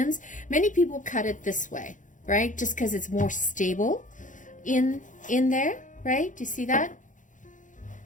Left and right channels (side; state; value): right; late; 0.37 ms